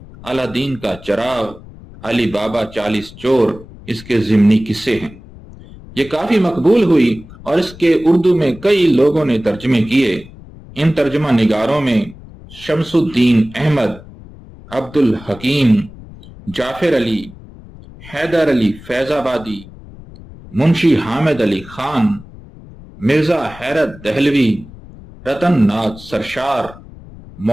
الادین کا چراغ، علی بابا 40 چور اس کے ضمنی قصے ہیں۔ یہ کافی مقبول ہوئی اور اس کے اردو میں کئی لوگوں نے ترجمے کیے۔ ان ترجمہ نگاروں میں شمس الدین احمد، عبد الحکیم، جعفر علی، حیدر علی فیض آبادی، منشی حامد علی خان، مرزا حیرت دہلوی، رتن ناتھ سرشار،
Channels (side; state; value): left; noise; rumble, 19 dB below the sound